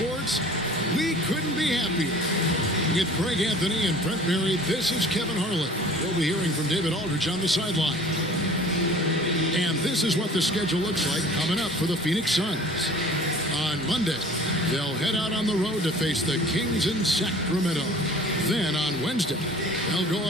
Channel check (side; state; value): both; normal; correlation 0.46